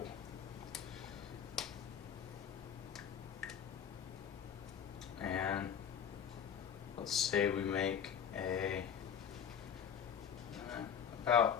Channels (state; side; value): quieter; right; 8.2 dB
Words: And let's say we make a